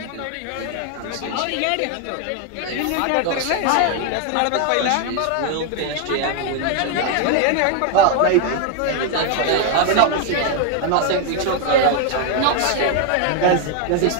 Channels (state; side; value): different; both; correlation 0.01